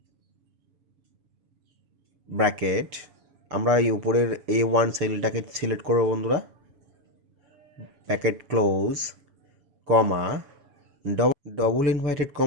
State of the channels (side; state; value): left; late; 6.6 ms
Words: ব্র্যাকেট। আমরা এই উপরের A1 সেলটাকে সিলেক্ট করবো বন্ধুরা, bracket close comma double invited